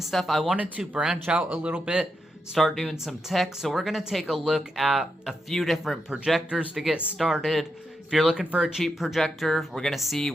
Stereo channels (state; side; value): normal; both; correlation 0.85